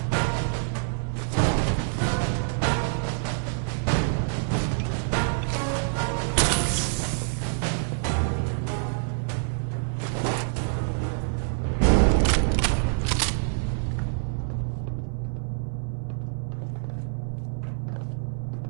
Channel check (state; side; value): silent; left; 61 dB below the other